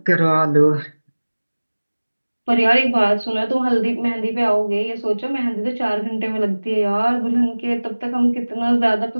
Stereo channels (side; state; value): both; inverted; correlation -1.00